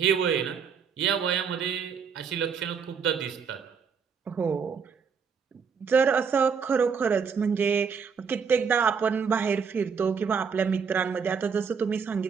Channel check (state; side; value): quieter; left; 6.2 dB